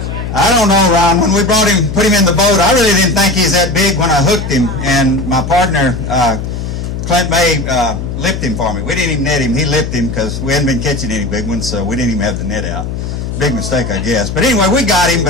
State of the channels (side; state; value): left; noise; hum, 5 dB below the sound